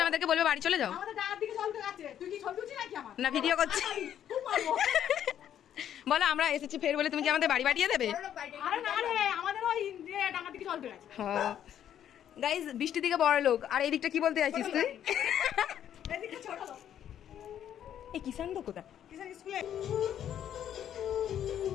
আমাদেরকে বলবে বাড়ি চলে যাও, না ভিডিও করছি। বলো আমরা এসেছি ফের বলে তুমি কি আমাদের বাড়ি পাঠিয়ে দেবে? হ্যাঁ গাইজ, বৃষ্টির দিকে বড় লোক, আর এই দিকটা কি বলতে চাইছিস তুই? এই কিষান তো কোথা?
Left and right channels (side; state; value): right; quieter; 10.1 dB